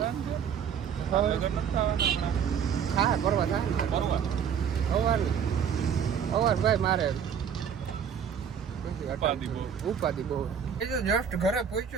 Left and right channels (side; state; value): left; quieter; 7.8 dB